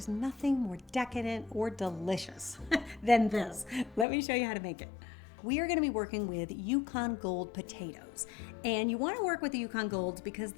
nothing more decadent or delicious than this. Let me show you how to make it. We are going to be working with Yukon Gold potatoes. And you want to work with the Yukon Golds because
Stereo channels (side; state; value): right; drops out; at 4.0 s